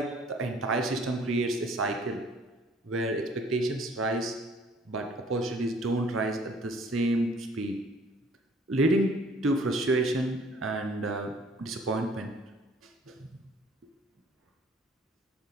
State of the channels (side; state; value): both; normal; correlation 0.56